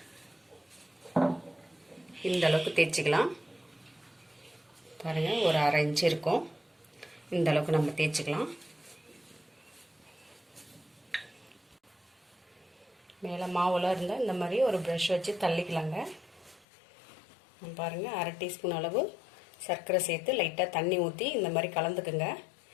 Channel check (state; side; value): drops out; right; at 16.7 s